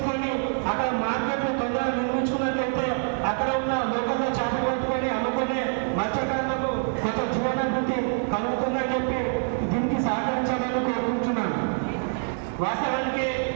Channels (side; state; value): left; silent; 55 dB below the other